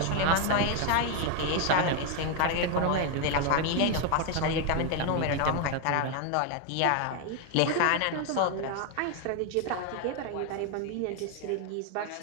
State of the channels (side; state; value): both; different; correlation 0.01